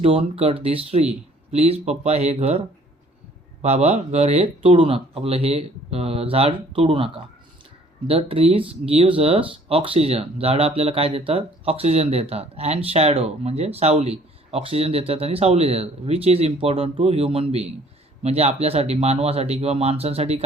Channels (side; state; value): both; normal; correlation 0.57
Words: don't cut this tree, please पप्पा हे घर बाबा घर हे तोडू नका, आपलं हे झाड तोडू नका. The trees gives us oxygen, झाडं आपल्याला काय देतात, ऑक्सिजन देतात. अँड शॅडो म्हणजे सावली, ऑक्सिजन देतात आणि सावली देतात. Which is important to human being, म्हणजे आपल्यासाठी मानवासाठी किंवा माणसांसाठी